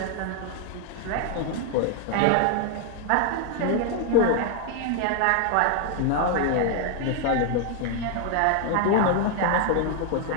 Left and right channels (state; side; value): different; both; correlation 0.00